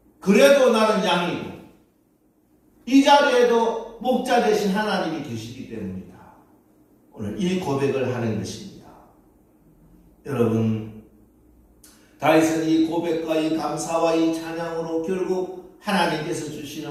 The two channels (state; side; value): identical; both; correlation 1.00